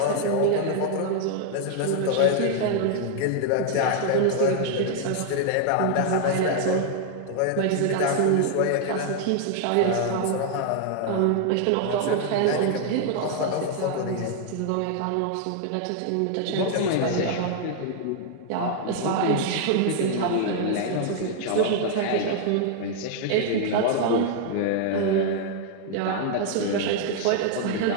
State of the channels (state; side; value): different; both; correlation 0.00